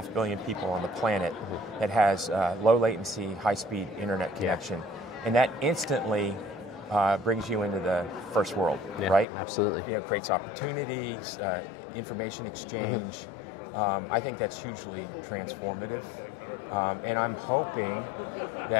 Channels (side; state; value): right; drops out; at 9.2 s